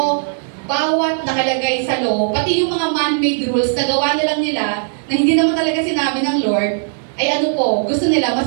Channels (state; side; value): silent; left; digital silence